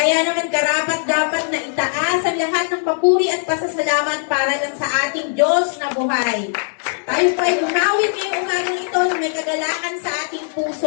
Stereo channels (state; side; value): silent; right; digital silence